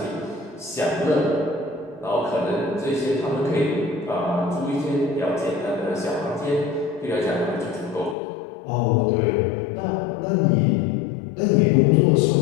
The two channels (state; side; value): drops out; right; at 8.2 s